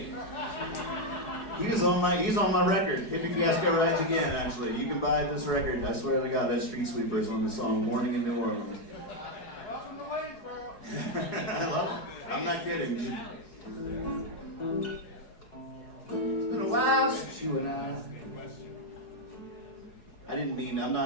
He's on my record. Hippie Fiasco Rides Again, actually. You can buy this record. I swear to God, that's Street Sweepers on the song Morning in New Orleans. Welcome to Waynesboro. I love it. I'm not kidding. It's been a while since you and I didn't mean, I'm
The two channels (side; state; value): right; late; 4.7 ms